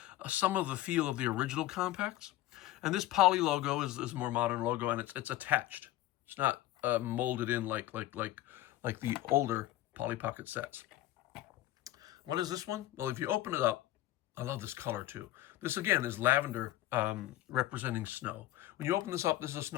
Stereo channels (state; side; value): quieter; right; 15.4 dB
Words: some of the feel of the original compacts. And this Polly logo is a more modern logo, and it's attached. It's not molded in like the older Polly Pocket sets. What is this one? Well, if you open it up, I love this color too. This again is lavender representing snow. When you open this up, this is a